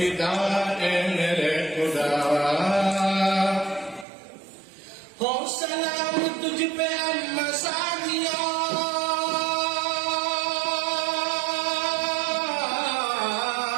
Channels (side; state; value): left; drops out; at 4.0 s